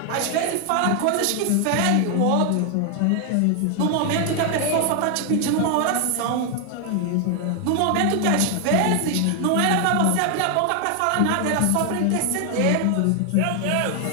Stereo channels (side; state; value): both; different; correlation 0.00